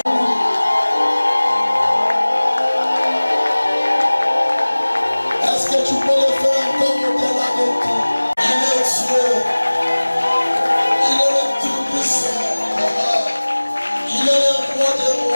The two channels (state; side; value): inverted; both; correlation -1.00